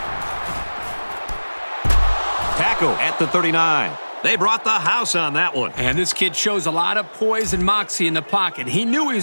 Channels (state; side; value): inverted; both; correlation -1.00